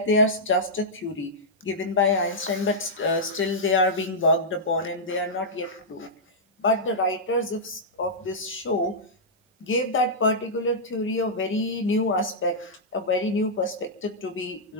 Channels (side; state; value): both; normal; correlation -0.11